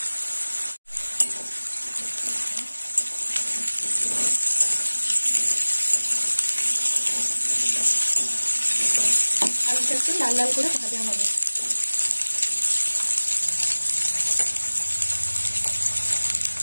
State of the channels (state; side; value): inverted; both; correlation -1.00